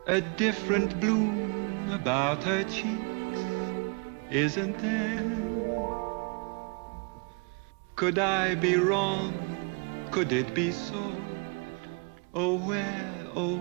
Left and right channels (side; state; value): left; quieter; 34.6 dB